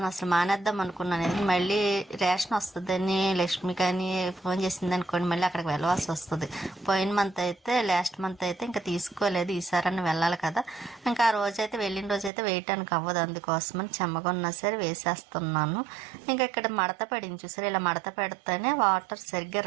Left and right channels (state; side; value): drops out; left; at 12.3 s